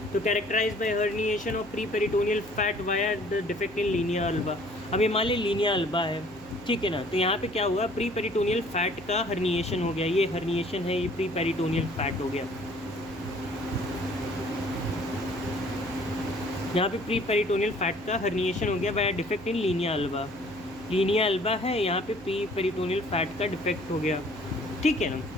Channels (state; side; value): noise; right; hum, 21 dB below the sound